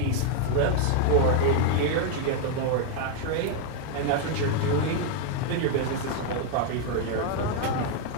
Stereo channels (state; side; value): different; both; correlation 0.01